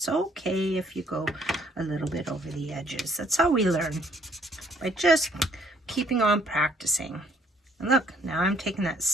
okay if you go a little bit over the edges. That's how we learn, by just keeping on practicing. And look, now I'm taking that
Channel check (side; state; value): both; normal; correlation 0.63